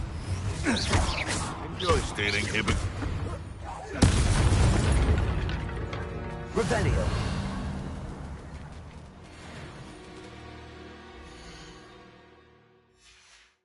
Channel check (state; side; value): identical; both; correlation 1.00